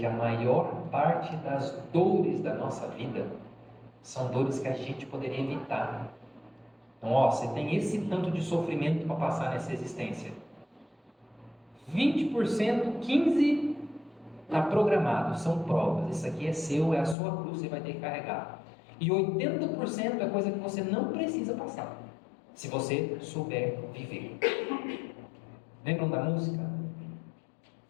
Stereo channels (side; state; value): right; drops out; at 17.2 s